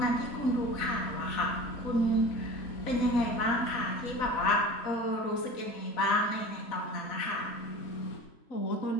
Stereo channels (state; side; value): late; right; 4.0 ms